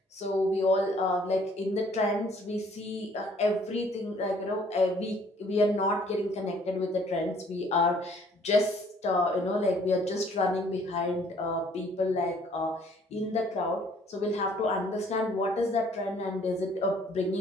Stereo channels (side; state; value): both; normal; correlation 0.59